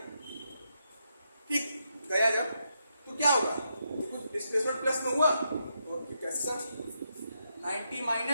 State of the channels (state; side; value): inverted; both; correlation -0.81